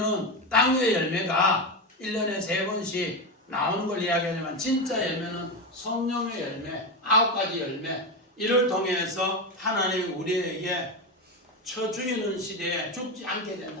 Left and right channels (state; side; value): normal; both; correlation 0.15